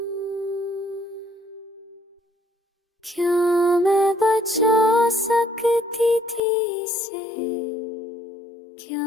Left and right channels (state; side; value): drops out; right; at 6.4 s